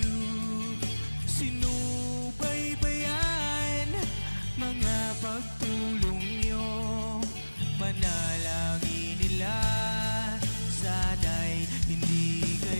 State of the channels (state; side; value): inverted; both; correlation -1.00